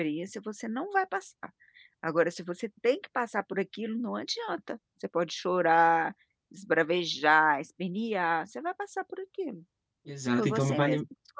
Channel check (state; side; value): identical; both; correlation 1.00